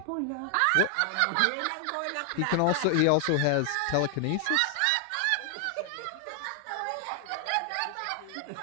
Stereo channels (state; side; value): different; both; correlation 0.00